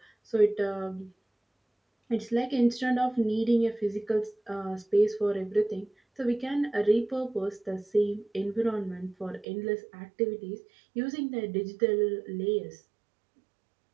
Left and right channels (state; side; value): drops out; left; at 9.5 s